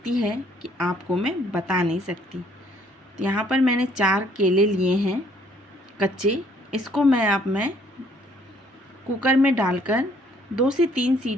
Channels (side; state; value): both; normal; correlation 0.63